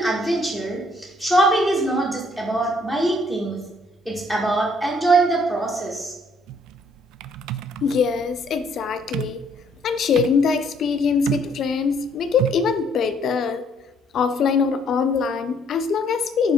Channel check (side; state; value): both; normal; correlation 0.65